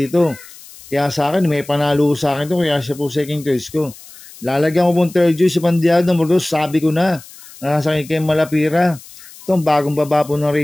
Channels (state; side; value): noise; left; hiss, 20 dB below the sound